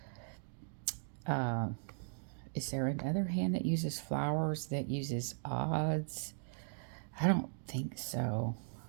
Is there another hand that uses flowers that uses odds? I don't think so.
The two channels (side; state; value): left; silent; digital silence